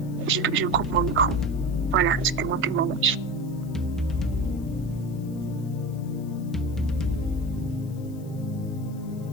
Je coupe mon micro. Voilà, c'était mon témoignage.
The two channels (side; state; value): left; noise; hiss, 25 dB below the sound